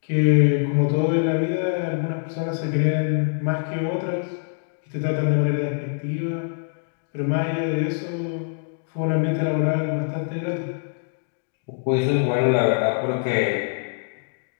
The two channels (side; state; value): right; silent; 63 dB below the other